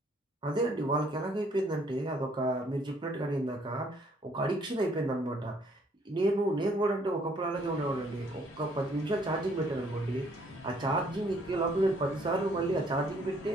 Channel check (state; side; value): normal; both; correlation 0.64